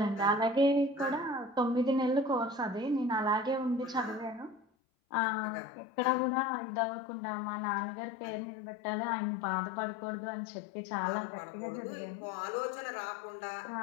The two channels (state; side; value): drops out; right; at 4.7 s